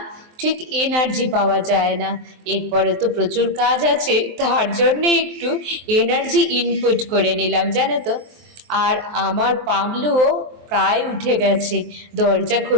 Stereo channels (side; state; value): left; late; 23 ms